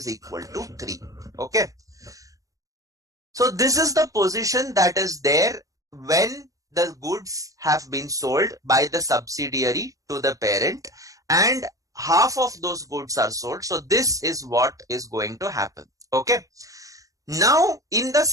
Okay. So this is the position that is there when the goods have been sold by the subsidiary to the parent, and half of those goods are sold. So this is what is going to happen. Okay. Now in the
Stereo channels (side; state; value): left; late; 0.16 ms